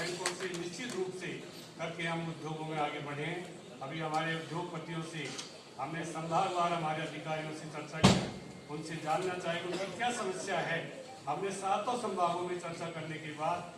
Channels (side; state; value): both; identical; correlation 1.00